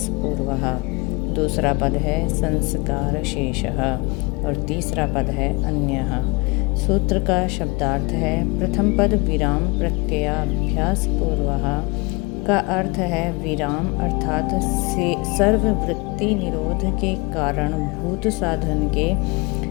पूर्वः, दूसरा पद है संस्कार शेषः और तीसरा पद है अन्यः। सूत्र का शब्दार्थ है प्रथम पद विराम प्रत्ययाभ्यास पूर्वः का अर्थ है विराम अर्थात सर्ववृत्ति निरोध के कारण भूत साधन के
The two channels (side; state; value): right; quieter; 27.3 dB